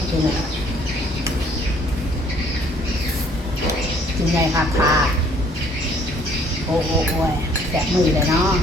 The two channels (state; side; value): normal; both; correlation 0.60